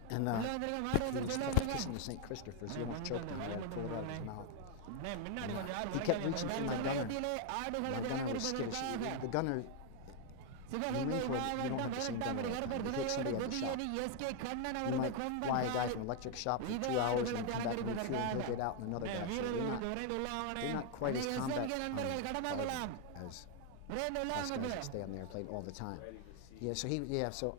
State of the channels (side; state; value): both; different; correlation 0.00